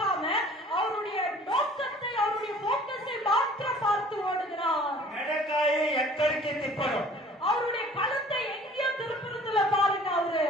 அவருடைய நோக்கத்தை அவருடைய போக்கஸை மாத்திரம் பார்த்து ஓடுகிறார். మెడకాయ ఎక్కడికి తిప్పడం, அவருடைய கழுத்தை எங்கேயோ திருப்புறதுல பாருங்க அவரு.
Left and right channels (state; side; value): normal; both; correlation 0.50